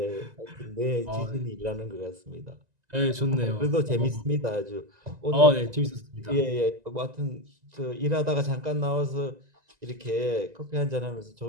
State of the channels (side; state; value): left; late; 1.9 ms